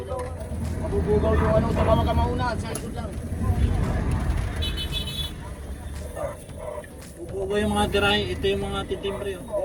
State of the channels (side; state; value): both; identical; correlation 1.00